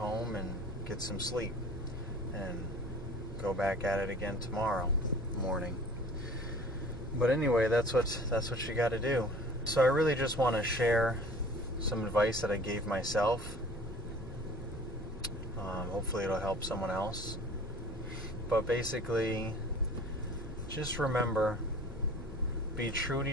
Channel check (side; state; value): both; normal; correlation 0.46